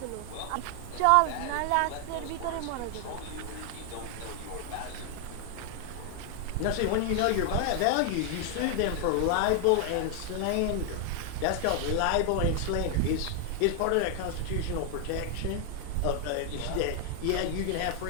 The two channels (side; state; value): both; different; correlation 0.00